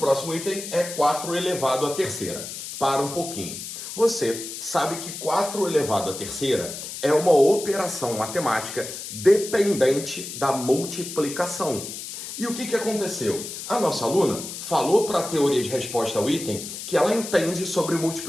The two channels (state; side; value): noise; left; hiss, 9 dB below the sound